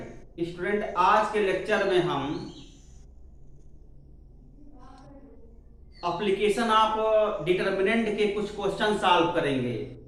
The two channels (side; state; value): both; identical; correlation 1.00